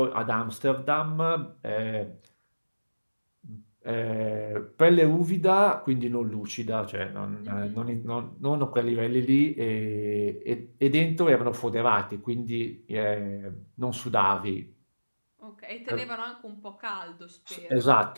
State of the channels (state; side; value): inverted; both; correlation -1.00